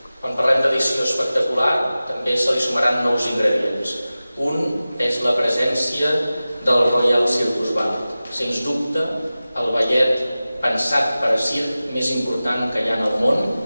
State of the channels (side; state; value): both; inverted; correlation -0.96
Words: Quan parlem d'edició espectacular, també se li sumaran nous ingredients. Un és la presència del Royal Circus Ballet. Sens dubte, el ballet pensat per a circ més important que hi ha en el món,